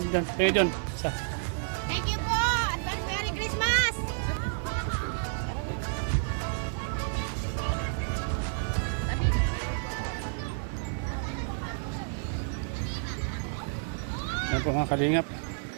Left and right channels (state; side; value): silent; left; 58 dB below the other